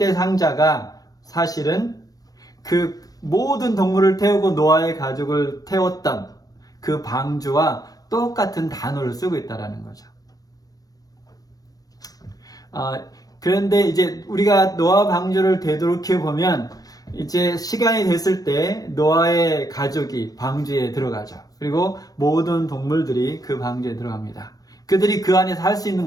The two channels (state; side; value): late; right; 0.18 ms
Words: 상자가 사실은 그 모든 동물을 태우고 노아의 가족을 태웠던 그 방주와 똑같은 단어를 쓰고 있다라는 거죠. 그런데 이제 우리가 노아 방주를 되돌이켜 보면 이제 시간이 됐을 때 노아의 가족이 방주에 들어가죠. 그리고 모든 동물들이 그 방주에 들어갑니다. 그들이 그 안에서 할 수 있는